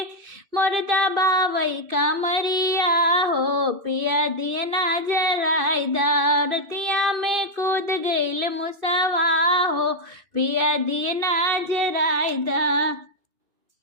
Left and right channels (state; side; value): late; left; 2.5 ms